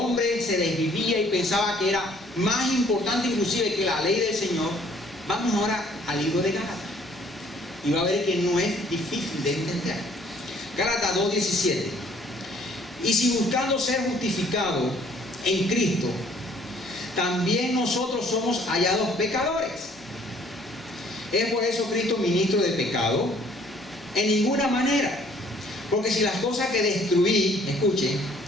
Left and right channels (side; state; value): both; normal; correlation 0.59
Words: se desvivía y pensaba que era más importante inclusive que la ley del Señor. Vamos ahora al libro de Gálatas y va a ver que no es difícil de entender. Gálatas 2:17. Y si buscando ser justificados en Cristo, también nosotros somos hallados pecadores. ¿Es por eso Cristo ministro de pecado? En ninguna manera. Porque si las cosas que destruí, escuchen,